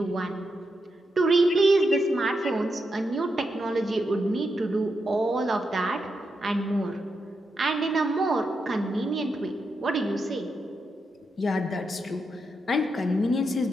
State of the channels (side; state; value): both; normal; correlation 0.85